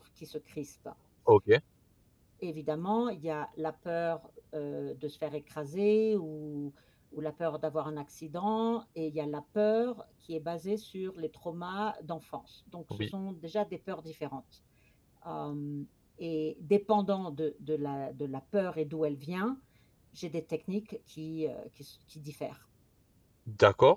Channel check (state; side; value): identical; both; correlation 1.00